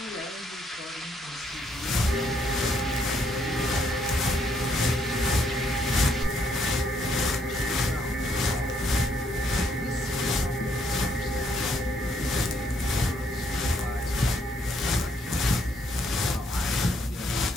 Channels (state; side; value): normal; both; correlation 0.72